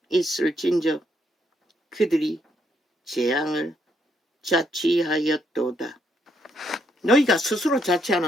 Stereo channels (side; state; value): both; normal; correlation 0.75